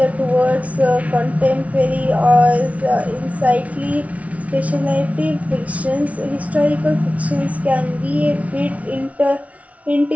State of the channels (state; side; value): late; left; 0.067 ms